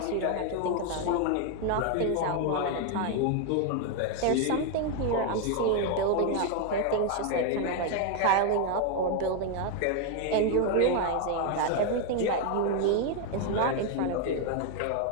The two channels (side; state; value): both; different; correlation 0.00